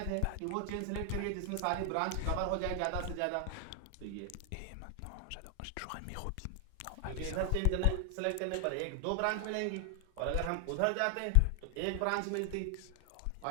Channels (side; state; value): both; different; correlation 0.00